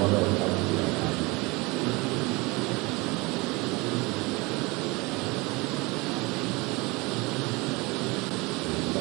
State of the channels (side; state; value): left; quieter; 25.0 dB